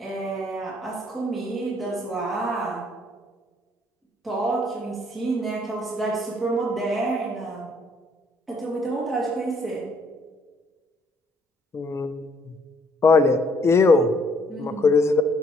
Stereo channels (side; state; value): both; normal; correlation 0.65